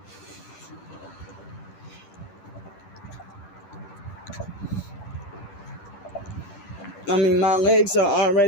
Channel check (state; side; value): late; right; 10 ms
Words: I mean, my legs are